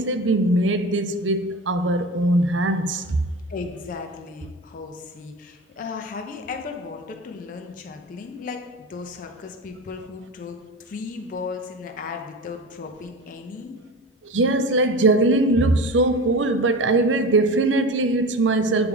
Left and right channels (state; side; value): normal; both; correlation 0.30